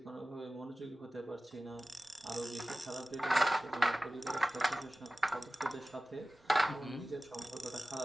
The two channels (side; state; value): both; normal; correlation 0.96